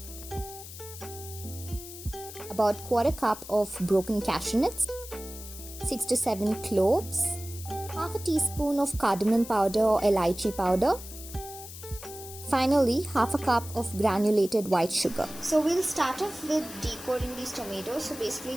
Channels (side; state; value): left; noise; hiss, 13 dB below the sound